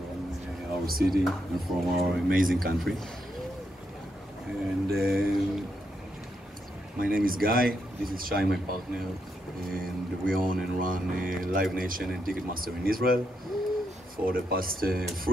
our city and from our amazing country. And my name is Guy, this is Shai, my partner, and we own and run Live Nation and Ticketmaster in Israel for the past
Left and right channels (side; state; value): both; normal; correlation 0.80